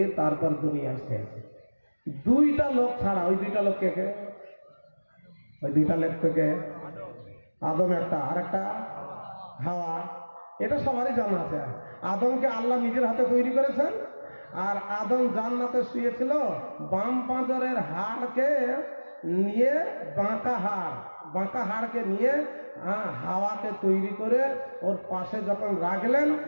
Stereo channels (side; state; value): both; inverted; correlation -1.00